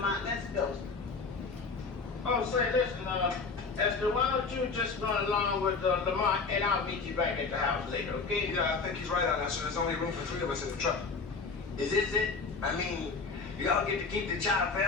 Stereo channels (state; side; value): quieter; right; 4.5 dB